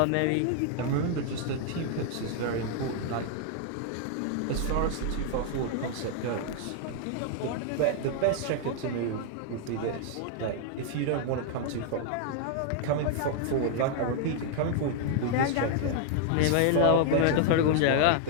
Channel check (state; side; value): different; both; correlation 0.00